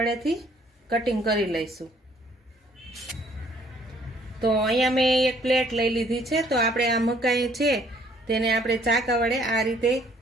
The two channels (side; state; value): both; normal; correlation 0.62